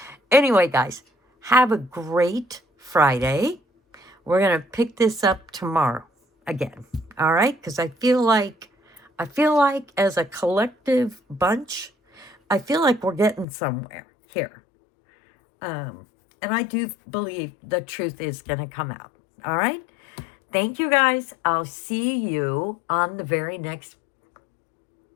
anyway, guys, have a great Friday. We're going to pick this up tomorrow again. All right? Because I feel like as a collective bunch, I feel like we're getting somewhere here. And I do believe the truth is going to come out. All right? Thank you, guys. I'll see you on the very next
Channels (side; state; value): right; drops out; at 13.5 s